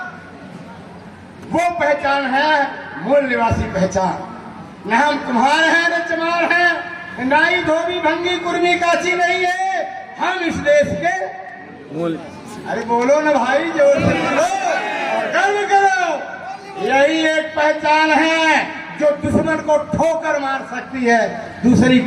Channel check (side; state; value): both; identical; correlation 1.00